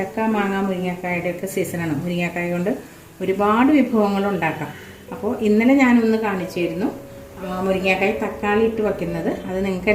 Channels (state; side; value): identical; both; correlation 1.00